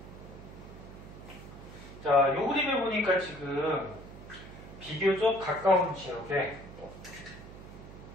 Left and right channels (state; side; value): noise; right; hum, 15 dB below the sound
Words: 자, 요 그림을 보니까 지금 비교적 가까운 지역에